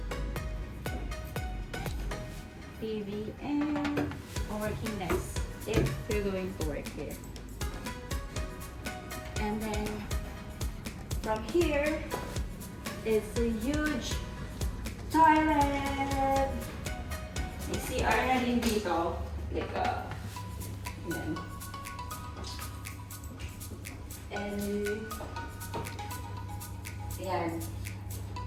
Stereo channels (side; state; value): both; identical; correlation 1.00